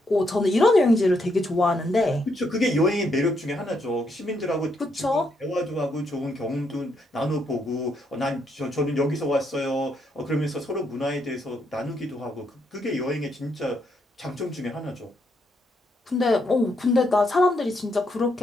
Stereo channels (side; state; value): both; normal; correlation 0.77